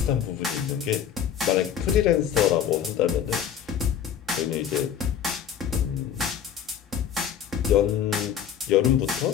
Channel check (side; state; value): right; quieter; 8.8 dB